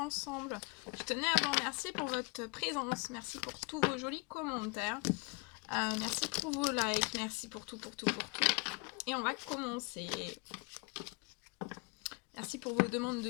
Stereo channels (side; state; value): right; quieter; 29.5 dB